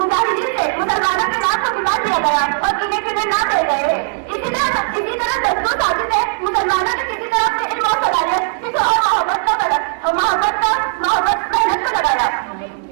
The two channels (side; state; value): left; silent; digital silence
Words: से मुसलमानों के नाम को मिला दिया गया और गिने चुने ना रह गए, इसी तरह दस्तूर साजिश है मुसलमानों ने किसी तरह अपने इल्म और सलाहियत किसी और मोहब्बत मेहनत को लगाया।